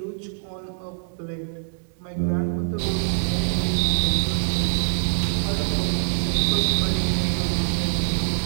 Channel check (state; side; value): silent; left; digital silence